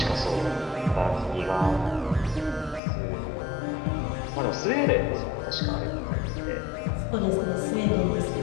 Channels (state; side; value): drops out; right; at 2.8 s